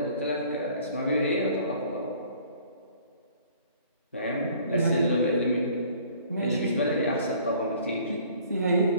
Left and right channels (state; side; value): inverted; both; correlation -0.55